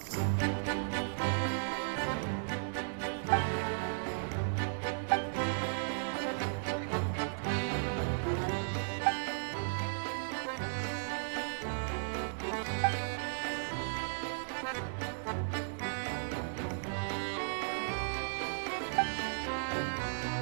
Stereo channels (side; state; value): left; silent; 54 dB below the other